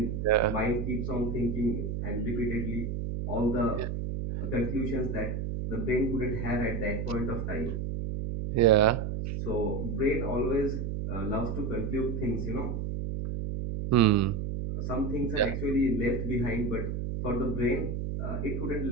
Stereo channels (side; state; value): right; noise; hum, 3 dB below the sound